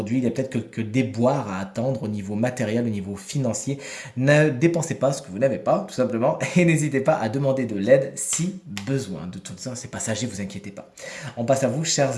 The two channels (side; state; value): both; identical; correlation 1.00